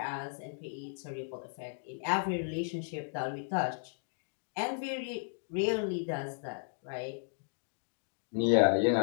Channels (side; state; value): right; silent; digital silence